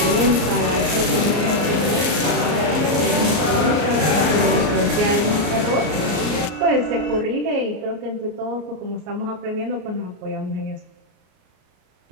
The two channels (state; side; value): late; left; 34 ms